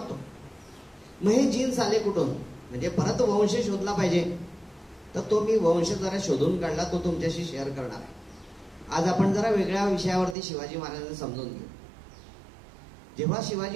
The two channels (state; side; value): drops out; left; at 10.4 s